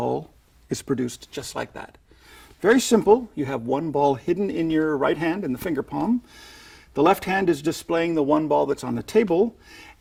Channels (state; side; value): identical; both; correlation 1.00